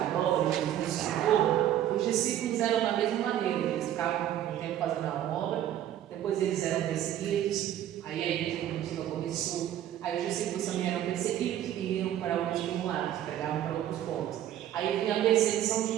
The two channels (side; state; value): left; quieter; 11.5 dB